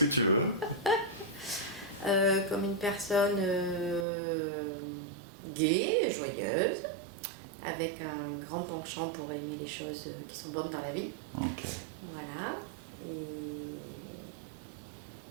que tu veux. Comme une personne gaie, joyeuse, avec un grand penchant pour aimer les choses qui sont bonnes dans la vie. Okay. Voilà. Et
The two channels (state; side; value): drops out; left; at 4.0 s